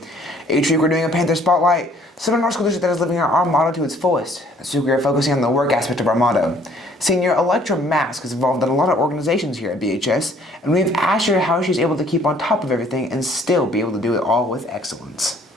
Each week, we're doing a Panther Spotlight, someone in our school district that is living out our motto to its fullest. This week, we are focusing on the work aspect of our motto. Senior Electra Mask is involved in a lot of organizations here at BHS, and we've asked her how she's able to keep on top of everything and still be able to do it all with excellence.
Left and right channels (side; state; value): both; normal; correlation 0.59